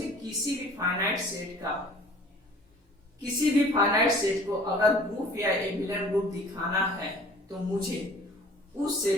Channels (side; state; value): both; normal; correlation 0.49